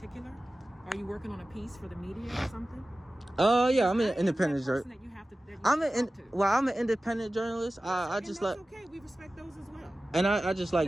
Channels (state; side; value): normal; both; correlation 0.96